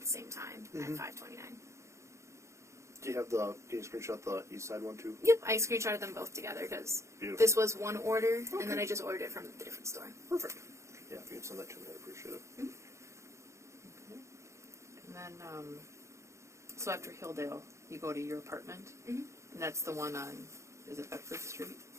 the same time at 5:29. Do you have the? Can you screenshot the East Side one too? Yep, I screenshotted them both together because Beautiful. this was one order, and then Okay. I just ordered it from the different store. Perfect. Yeah, if you can send that to me, I'd appreciate it. And then, so after Hilldale, you go to your apartment, Mhm. and that's the one on, is it Bedford Street?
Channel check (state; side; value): late; left; 0.14 ms